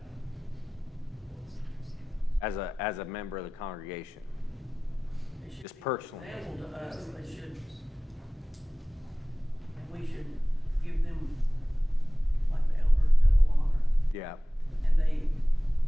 as a member of the congregation? They should Just be personally. example to us, they should, and we should give them, like the elders, double honor, Yeah. and they,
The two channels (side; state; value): both; normal; correlation 0.97